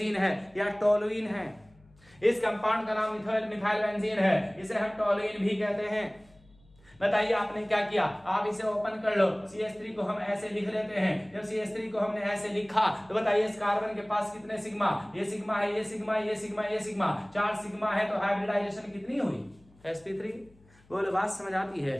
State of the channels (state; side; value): noise; left; hum, 29 dB below the sound